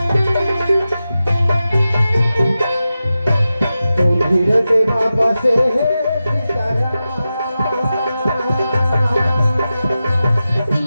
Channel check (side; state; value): both; inverted; correlation -0.93